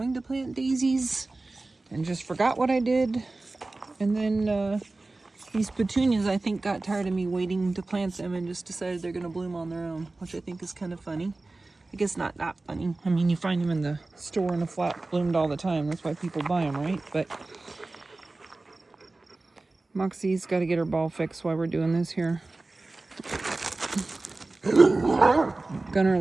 to plant daisies and just forgot what I did. And then these petunias, I think, got tired of me waiting to plant them and just decided they're gonna bloom on their own, which I think is kind of funny. I guess not that funny. I mean, you find them in the store in a flat bloomed all the time. That's why people buy them, right? But Moxie's got to get her ball fixed while we're doing this here. Gunner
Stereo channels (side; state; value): left; quieter; 3.2 dB